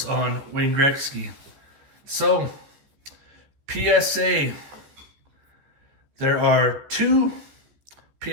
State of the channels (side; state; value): left; late; 15 ms